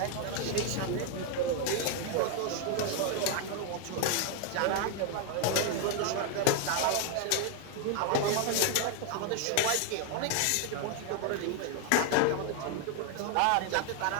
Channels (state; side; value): different; both; correlation 0.01